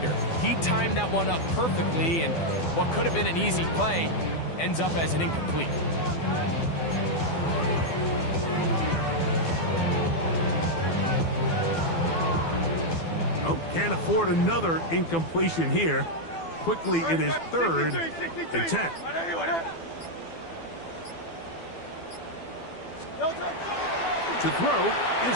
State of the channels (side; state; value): right; late; 12 ms